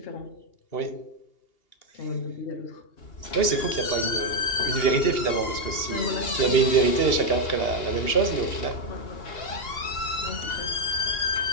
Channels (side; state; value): right; late; 2.8 ms